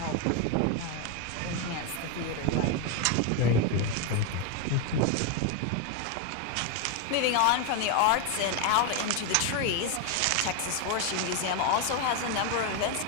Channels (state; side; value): different; both; correlation 0.01